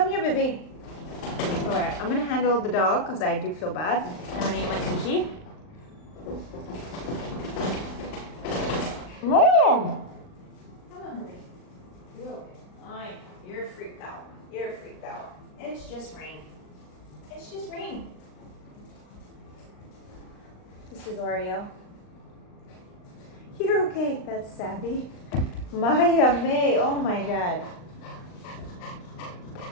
here, baby. Alright, I'm gonna handle the dog because I do feel bad. I'm gonna eat my sushi. Mom! Come on, baby. You're okay. You're freaked out. You're freaked out. It's just rain. It's just rain. This is Oreo. You're okay. That's Sabby. Maya May. Oh my god.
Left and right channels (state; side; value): late; right; 39 ms